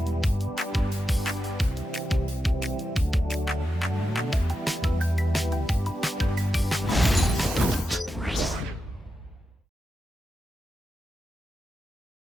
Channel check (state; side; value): normal; both; correlation 0.88